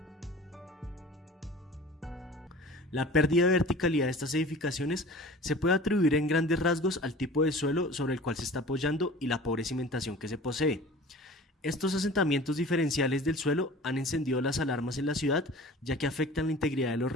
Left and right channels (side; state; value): both; normal; correlation 0.42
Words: La pérdida de verticalidad de estas edificaciones se puede atribuir en grandes rasgos al tipo de suelo sobre el cual se está apoyando y la pobre cimentación que se posee. Estos asentamientos diferenciales del suelo han encendido las alarmas en la ciudad, ya que afectan la integridad de los